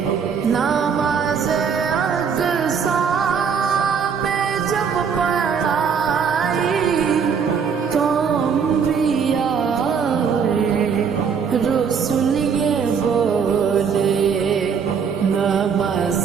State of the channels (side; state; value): left; quieter; 6.5 dB